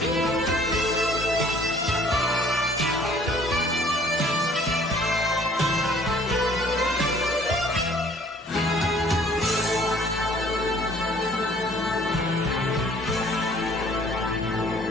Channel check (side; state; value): both; normal; correlation 0.56